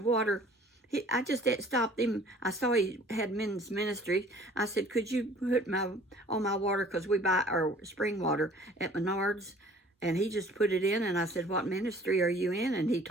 I just stopped him. I saw he had men's ministry. I said, "Could you put all my water, because we buy our spring water at Menards?" And he just put it in, and I said, "What ministry are you in?" And he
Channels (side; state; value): both; normal; correlation 0.52